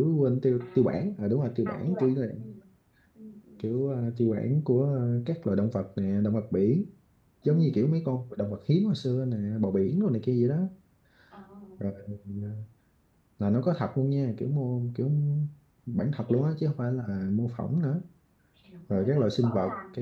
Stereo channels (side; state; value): both; identical; correlation 1.00